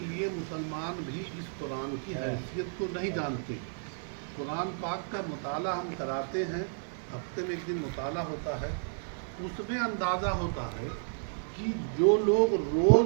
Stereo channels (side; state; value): left; silent; digital silence